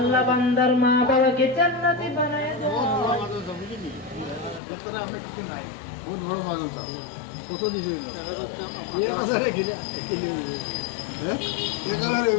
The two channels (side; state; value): right; drops out; at 4.6 s